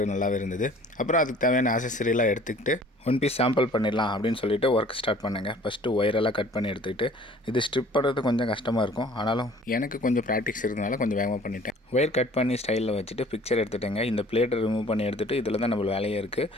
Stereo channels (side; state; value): both; normal; correlation 0.51